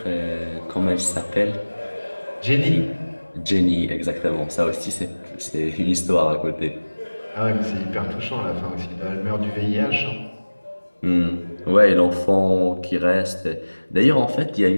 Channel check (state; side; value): inverted; both; correlation -1.00